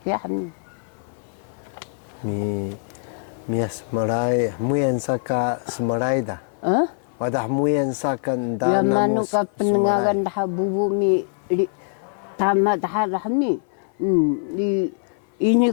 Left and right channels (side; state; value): right; silent; 57 dB below the other